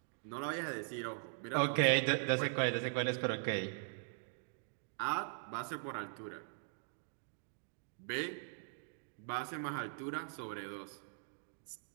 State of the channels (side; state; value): left; silent; digital silence